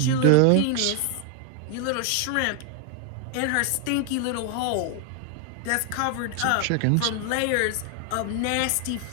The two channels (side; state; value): both; different; correlation 0.01